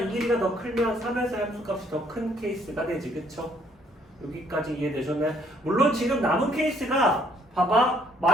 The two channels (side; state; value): both; normal; correlation 0.65